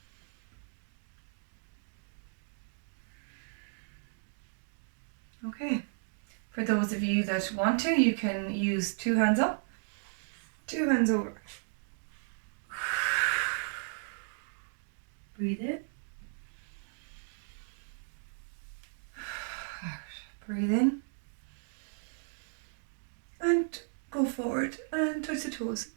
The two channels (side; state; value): left; silent; digital silence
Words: Okay. For those of you that want to, you can use 2 hands up, 2 hands over. Breathe in. Out. Breathe in. And go forward and touch the toes.